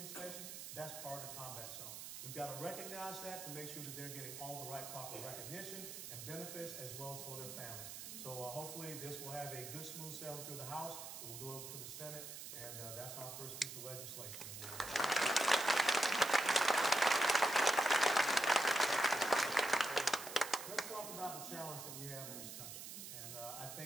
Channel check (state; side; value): noise; right; hiss, 9 dB below the sound